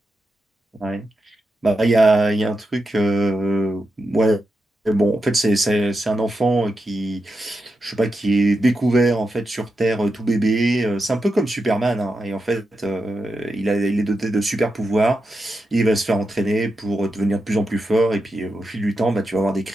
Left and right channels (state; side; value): normal; both; correlation 0.88